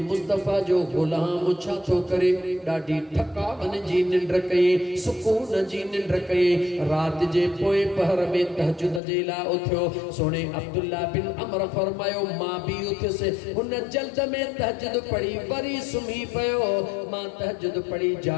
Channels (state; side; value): drops out; right; at 9.0 s